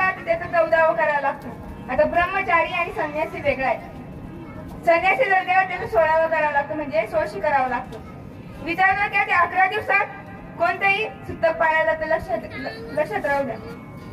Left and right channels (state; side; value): identical; both; correlation 1.00